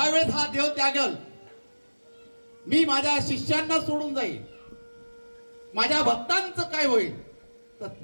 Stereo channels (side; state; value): both; inverted; correlation -1.00